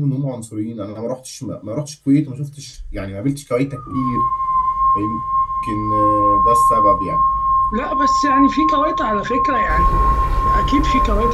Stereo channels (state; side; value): identical; both; correlation 1.00